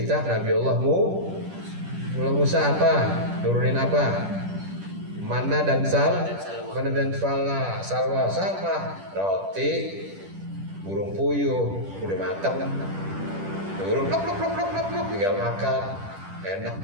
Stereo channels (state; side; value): late; left; 10 ms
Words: Nabi Allah Musa apa? Nurunin apa? Mana dan salwa sama roti, burung puyuh, udah matang. Burung plok, tinggal makan. Enak